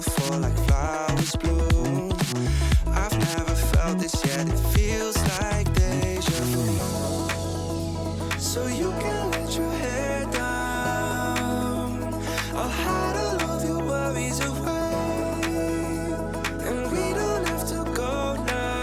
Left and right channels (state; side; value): identical; both; correlation 1.00